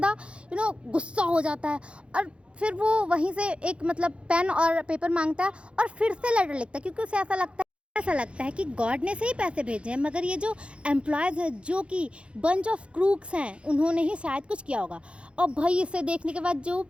गुस्सा हो जाता है। और फिर वो वहीं से एक मतलब पेन और पेपर मांगता है और फिर से लेटर लिखता है, क्योंकि उसे ऐसा लगता है कि गॉड ने सही पैसे भेजे हैं, मगर ये जो एम्प्लॉयज़ हैं जो कि बंच ऑफ क्रूक्स हैं उन्होंने ही शायद कुछ किया होगा। और भाई इसे देखने के बाद जो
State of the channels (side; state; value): left; late; 0.059 ms